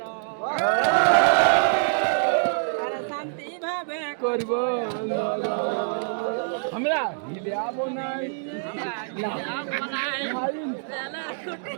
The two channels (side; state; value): left; silent; digital silence